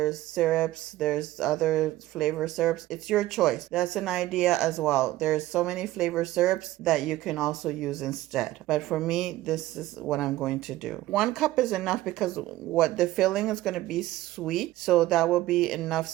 syrups. There's other flavor syrups. It's your choice. That's an idea as well. There's so many flavor syrups that you can also use instead. But for me, this is what I'm going to do. 1 cup is enough because what the filling is going to be sweet. So that will be enough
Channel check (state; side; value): quieter; left; 16.1 dB